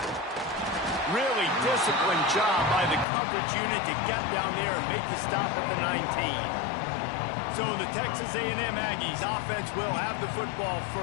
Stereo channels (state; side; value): drops out; right; at 3.1 s